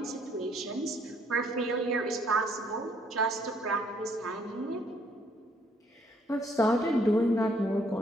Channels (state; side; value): normal; both; correlation 0.66